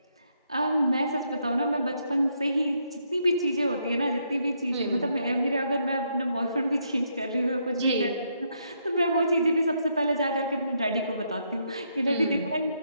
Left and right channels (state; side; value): inverted; both; correlation -0.76